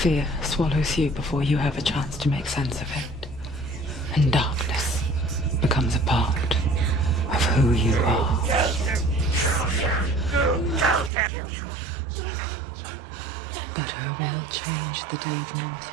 swallows you before you have a chance to make sense of it. And darkness becomes a part of who you are. You killed him. But her world changed the day the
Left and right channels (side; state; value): left; drops out; at 11.1 s